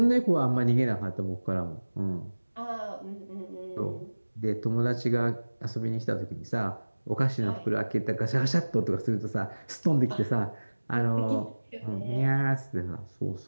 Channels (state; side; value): inverted; both; correlation -1.00